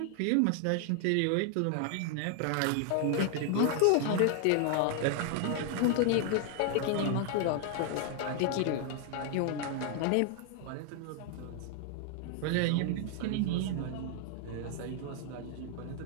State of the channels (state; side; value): different; both; correlation 0.00